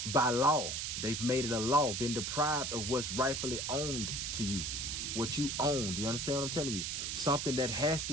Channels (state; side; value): noise; right; hiss, 2 dB below the sound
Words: by law. They've made it a law, been deprived of what's rightfully owned to you, what you own. Do you understand what I'm telling you? Something that has